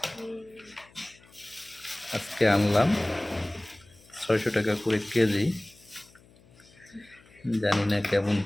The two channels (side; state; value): left; noise; hum, 27 dB below the sound